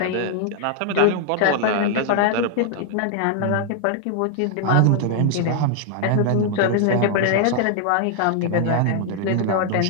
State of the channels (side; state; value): both; different; correlation 0.00